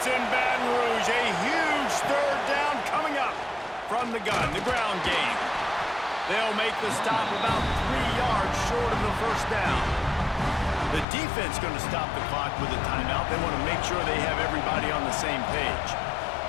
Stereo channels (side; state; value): right; drops out; at 11.1 s